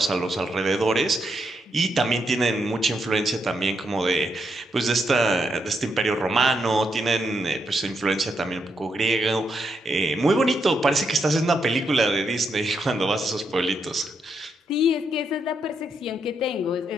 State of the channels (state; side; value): normal; both; correlation 0.80